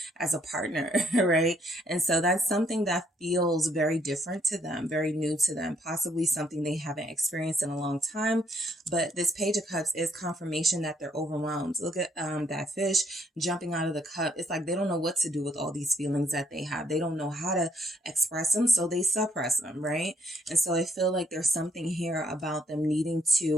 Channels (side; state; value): both; normal; correlation 0.71